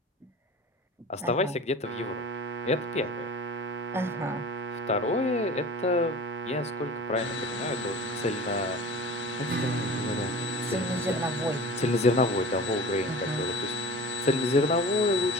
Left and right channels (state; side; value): normal; both; correlation 0.37